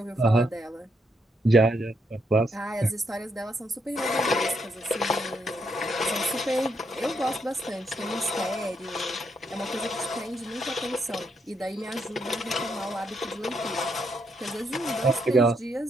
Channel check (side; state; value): both; normal; correlation 0.77